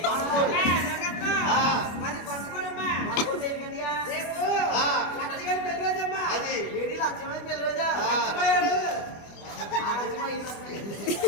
పంచుకోనమ్మా రేపు లక్షగా పెళ్ళరోజమ్మా ఏది లక్ష్యమైన పెళ్ళరోజా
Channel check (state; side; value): late; right; 25 ms